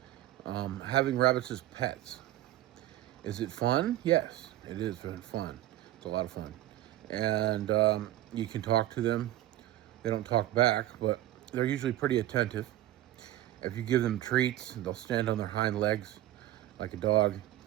Having rabbits as pets. Is it fun? Yes, it is very fun. It's a lot of fun. And you can talk to them. They don't talk back, but they're usually pretty attentive. If you give them treats, they'll stand on their hind legs like a dog.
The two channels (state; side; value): quieter; left; 14.5 dB